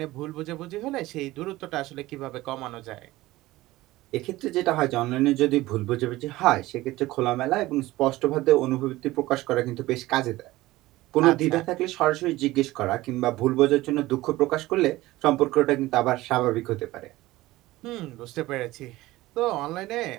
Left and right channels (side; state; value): left; quieter; 18.0 dB